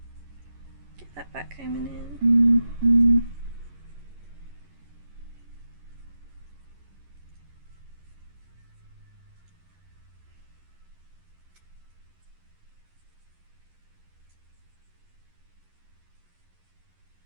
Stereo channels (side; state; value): left; late; 11 ms